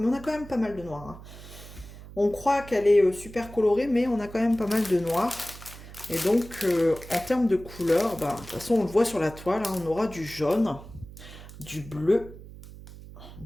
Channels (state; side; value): noise; right; hum, 16 dB below the sound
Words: on a quand même pas mal de noir. Hein. On croit qu'elle est super colorée, mais on a quand même pas mal de noir. Et donc, en termes de couleurs, bah, de toute façon, on le voit sur la toile, hein, on aura du jaune, du bleu,